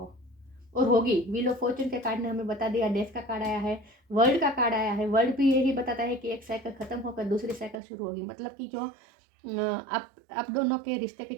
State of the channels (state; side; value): drops out; left; at 7.8 s